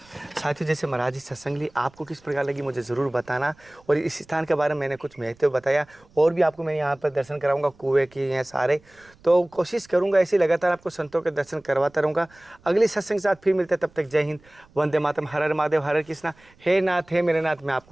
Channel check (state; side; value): noise; right; rumble, 29 dB below the sound